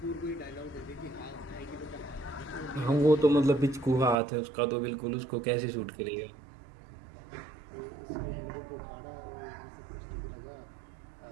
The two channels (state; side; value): drops out; left; at 4.2 s